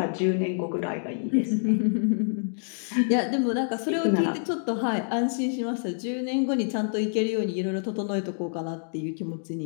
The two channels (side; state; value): right; silent; digital silence